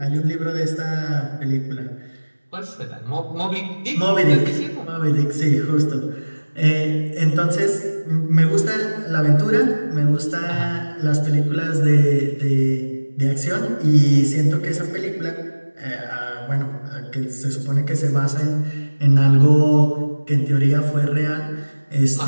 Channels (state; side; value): inverted; both; correlation -1.00